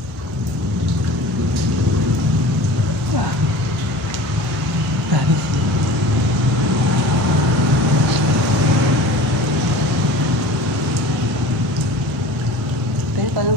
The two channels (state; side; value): normal; both; correlation 0.39